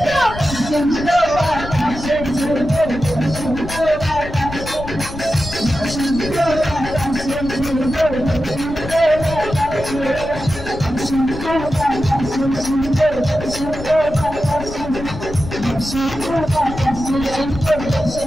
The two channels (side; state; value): left; noise; rumble, 11 dB below the sound